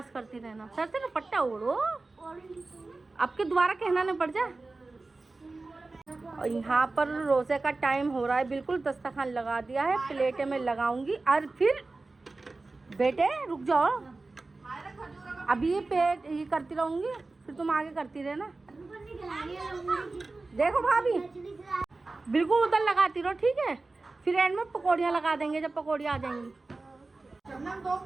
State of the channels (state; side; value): quieter; left; 3.4 dB